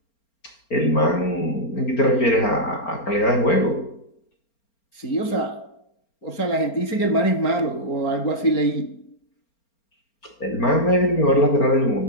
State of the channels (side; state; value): right; late; 4.4 ms